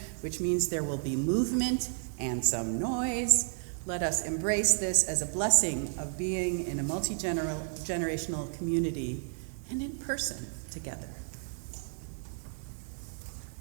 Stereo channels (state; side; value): silent; left; digital silence